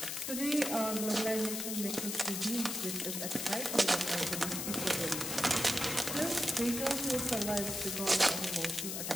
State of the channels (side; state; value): left; noise; hiss, 3 dB below the sound